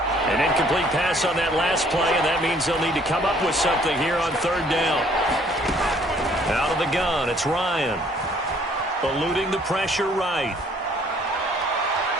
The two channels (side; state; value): both; normal; correlation 0.60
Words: An incomplete pass on that last play, and that means they'll need to come up with something here on third down. Out of the gun, it's Ryan. Eluding the pressure right.